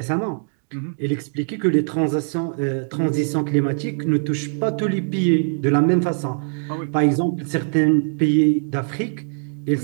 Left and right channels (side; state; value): left; silent; digital silence